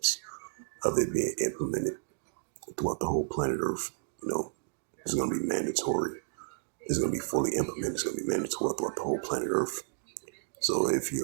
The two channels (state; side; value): silent; left; digital silence